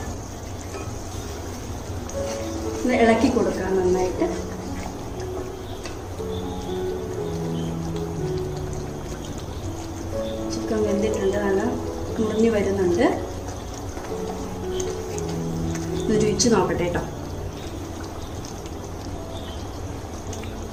ഇളക്കി കൊടുക്കാം നന്നായിട്ട്. ചിക്കൻ വെന്തിട്ടുണ്ട്. നല്ല മുറിഞ്ഞു വരുന്നുണ്ട്. രുചിച്ച് നോക്കട്ടെ കേട്ടോ.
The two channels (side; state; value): both; identical; correlation 1.00